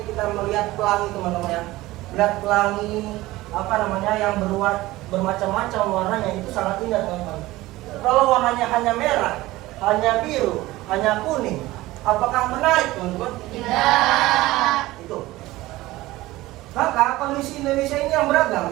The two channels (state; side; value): quieter; left; 18.1 dB